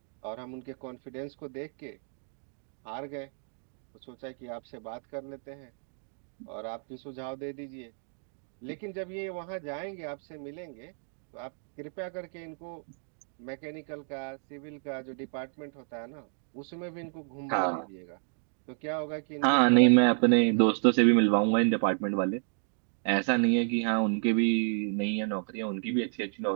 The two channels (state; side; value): silent; left; 57 dB below the other